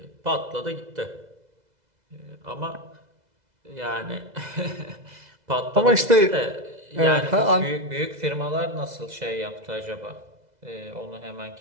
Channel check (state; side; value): late; left; 2.0 ms